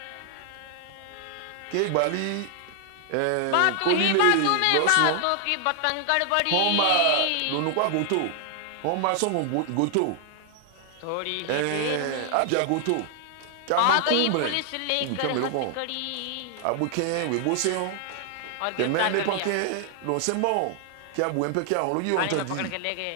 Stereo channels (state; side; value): different; both; correlation 0.00